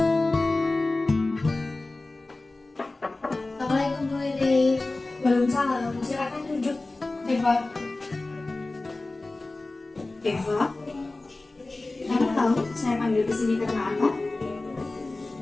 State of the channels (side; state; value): right; quieter; 3.1 dB